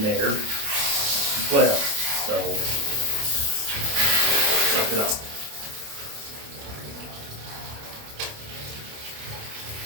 there as well, so suck it up.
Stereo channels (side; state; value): left; late; 28 ms